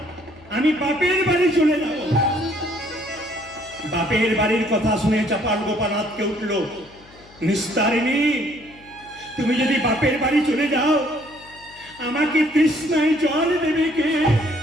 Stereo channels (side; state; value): left; noise; hum, 25 dB below the sound